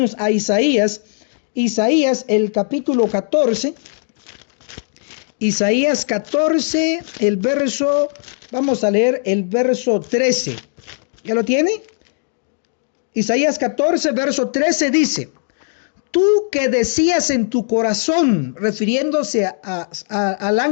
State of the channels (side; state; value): right; silent; digital silence